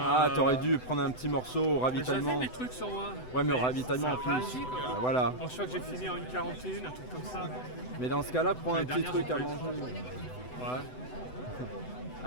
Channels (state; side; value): late; right; 8.0 ms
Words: t'aurais dû prendre un petit morceau au ravitaillement. J'avais mes trucs sur moi. Ouais, mais au ravitaillement en ça plus. a réagi, quoi. Ah, voilà. Je crois que j'ai fini en 1h41, un truc comme ça. Mais dans ce cas-là, prends un L'année petit dernière, truc j'ai à pas eu manger. Ouais.